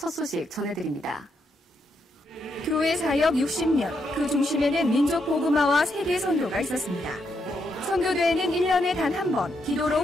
소식 전해드립니다. 교회 사역 60년, 그 중심에는 민족 복음화와 세계 선교가 있었습니다. 선교대회는 1년에 단 한 번 기도로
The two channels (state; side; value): normal; both; correlation 0.79